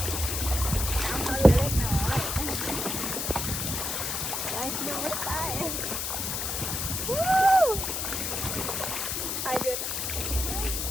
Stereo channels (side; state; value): left; noise; hiss, 2 dB below the sound